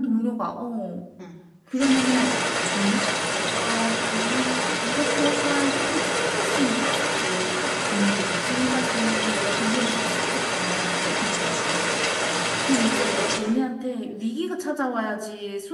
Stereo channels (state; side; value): identical; both; correlation 1.00